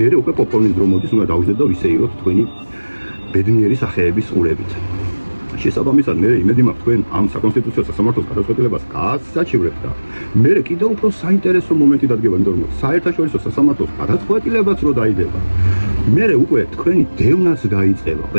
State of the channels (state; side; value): inverted; both; correlation -1.00